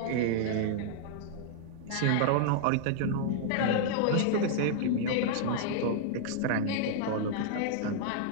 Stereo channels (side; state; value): both; different; correlation -0.01